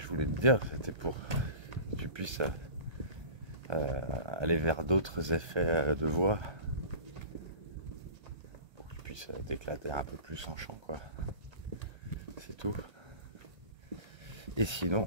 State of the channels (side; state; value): left; late; 1.3 ms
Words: je voulais te dire, c'était pour que tu puisses aller vers d'autres effets de voix pour que je puisse t'éclater un peu plus en chant, quoi. C'est tout. Et